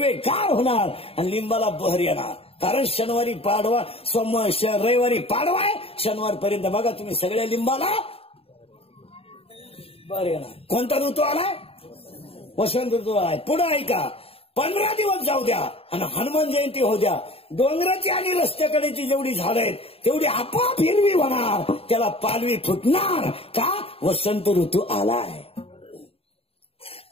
गार होणार आणि लिंबाला बहर येणार. कारण शनिवारी पाडवा, रविवारी पाडवा आहे, शनिवारपर्यंत बघा तुम्ही सगळ्या लिंबाला बर येणार. कोणता ऋतू आलाय? वसंत ऋतू आलाय. पुढे ऐका, 15 दिवस जाऊ द्या आणि हनुमान जयंती होऊ द्या. डोंगराची आणि रस्त्याकडेची जेवढी झाडं आहेत तेवढी आपोआप हिरवी होणार, त्याला पालवी फुटणार. का? वसंत ऋतू आलाय.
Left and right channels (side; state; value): right; late; 0.28 ms